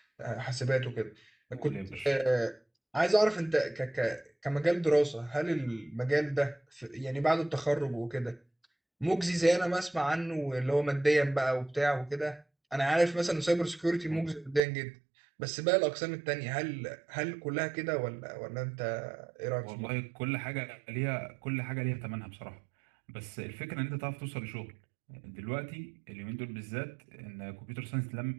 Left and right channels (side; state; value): left; drops out; at 14.6 s